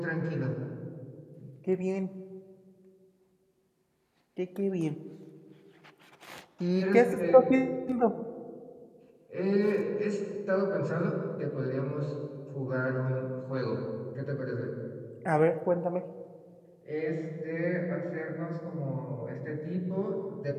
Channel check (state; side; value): identical; both; correlation 1.00